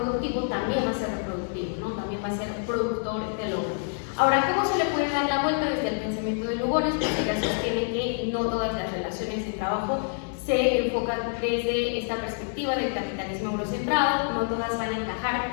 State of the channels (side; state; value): right; silent; 60 dB below the other